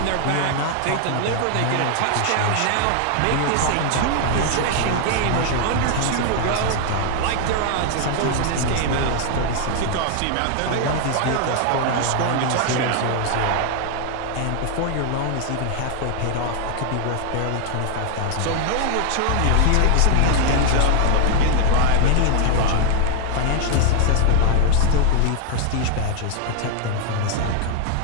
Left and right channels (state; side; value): different; both; correlation 0.00